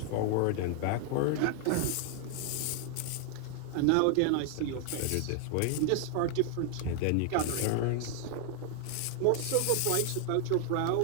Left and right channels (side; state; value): both; different; correlation 0.00